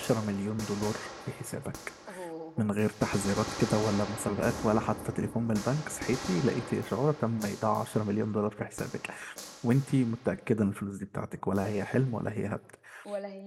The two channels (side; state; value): both; identical; correlation 1.00